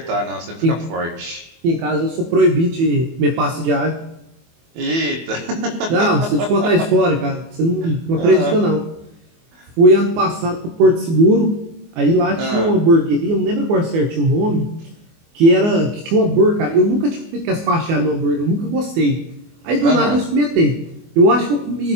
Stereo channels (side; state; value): left; late; 24 ms